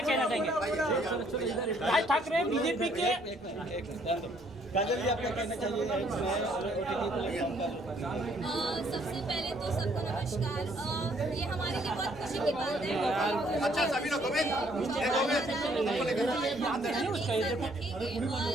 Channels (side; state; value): both; normal; correlation 0.65